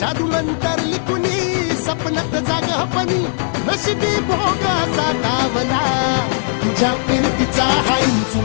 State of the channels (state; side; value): silent; right; digital silence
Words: जादू मंतर लिकुनी सपनात जागपणी नशिबी भोग असा डावला तुझ्या फिरतीचा हाईच